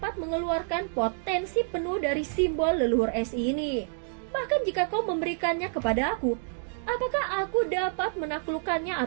mengeluarkan potensi penuh dari simbol leluhur es ini. Bahkan jika kau memberikannya kepada aku, apakah aku dapat menaklukkannya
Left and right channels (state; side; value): silent; left; digital silence